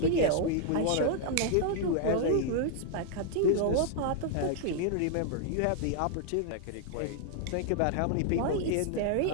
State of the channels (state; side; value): different; both; correlation 0.00